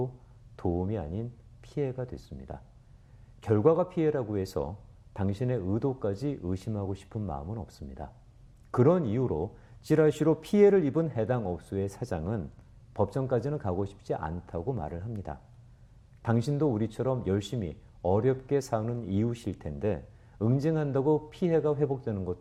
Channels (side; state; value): both; identical; correlation 1.00